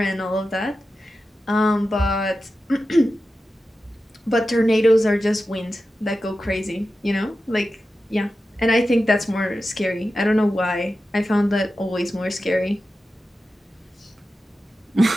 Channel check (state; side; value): normal; both; correlation 0.92